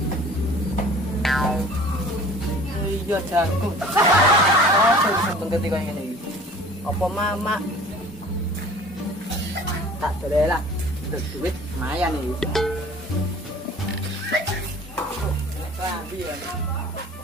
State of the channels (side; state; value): both; normal; correlation 0.47